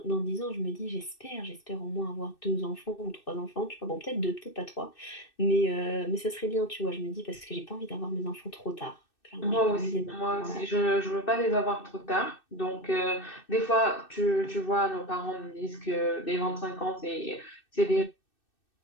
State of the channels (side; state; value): right; late; 2.6 ms